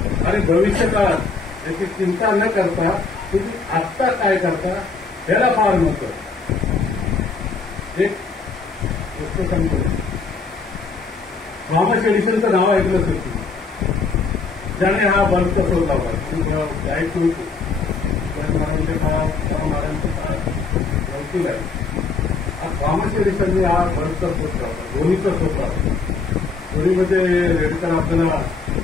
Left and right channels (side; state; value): right; quieter; 4.5 dB